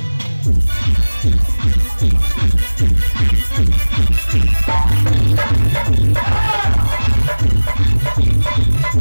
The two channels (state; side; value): inverted; both; correlation -1.00